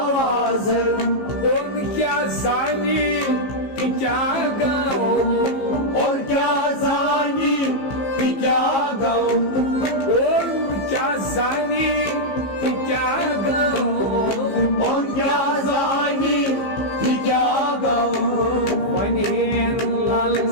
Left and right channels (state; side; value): late; right; 15 ms